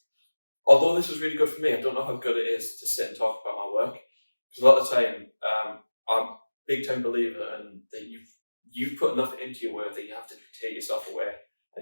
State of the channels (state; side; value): inverted; both; correlation -1.00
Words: although this was really good for me, I don't know how good it is to sit and talk about my work. Because a lot of the time, I'm a big time believer in that you've put enough into your work that you have to take yourself away,